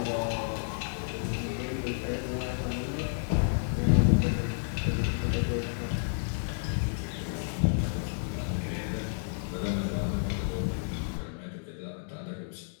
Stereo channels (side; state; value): right; silent; digital silence